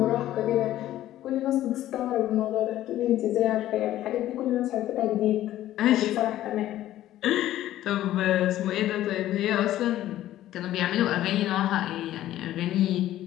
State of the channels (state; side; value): quieter; right; 13.6 dB